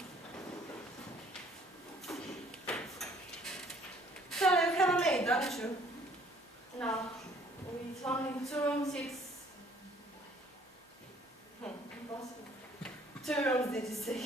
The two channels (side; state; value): both; normal; correlation 0.59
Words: So you have a maid, don't you? No, with only 2 rooms, it's impossible. 2 rooms, did you say?